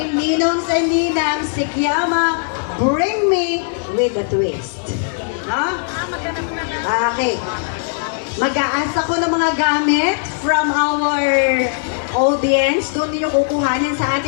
Ninongs and Ninang, Sikyama, bring me with a twist. Ha? Okay. Mag-a-ask ako ng mga gamit from our audience. Doon ninyo kukuhanin sa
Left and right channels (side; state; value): right; silent; digital silence